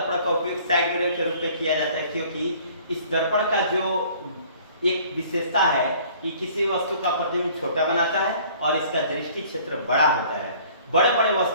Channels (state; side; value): inverted; both; correlation -0.53